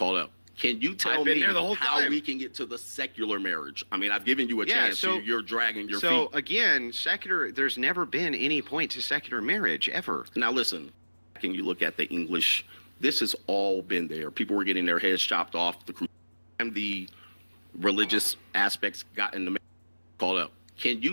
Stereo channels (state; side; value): inverted; both; correlation -1.00